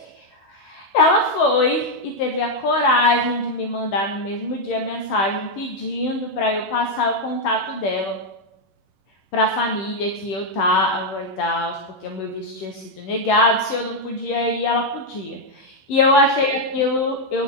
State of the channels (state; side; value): late; right; 11 ms